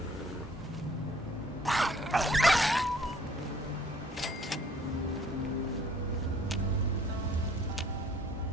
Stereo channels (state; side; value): normal; both; correlation 0.58